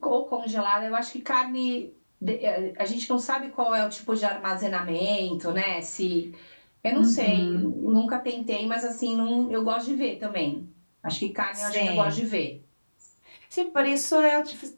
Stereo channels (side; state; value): both; inverted; correlation -1.00